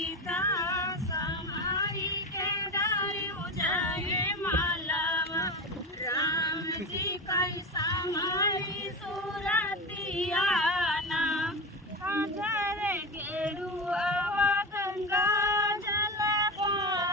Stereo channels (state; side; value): normal; both; correlation 0.22